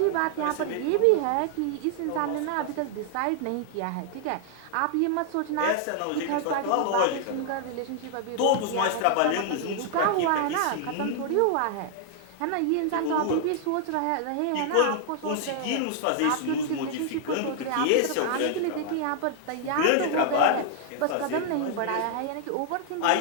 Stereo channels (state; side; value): different; both; correlation -0.01